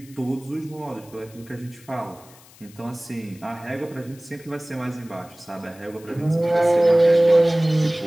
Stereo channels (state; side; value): noise; left; hiss, 24 dB below the sound